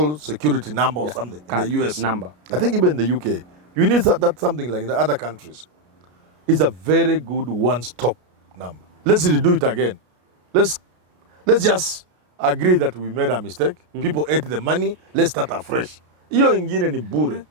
security number or something in the US. Number. I think even in the UK. You need that something like in the other countries. It's a very good one-stop number. Let's redo it again. Let's just agree that we made a mistake. People ate the money. Let's start afresh. People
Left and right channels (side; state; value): left; late; 33 ms